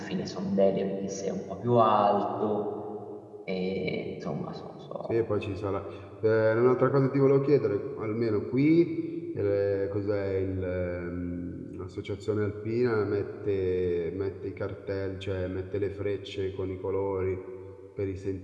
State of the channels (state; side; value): identical; both; correlation 1.00